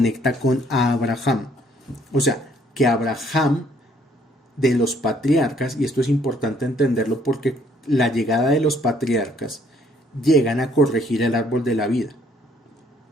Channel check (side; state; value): both; normal; correlation 0.64